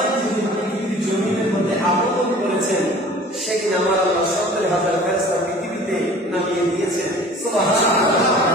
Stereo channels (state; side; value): normal; both; correlation 0.46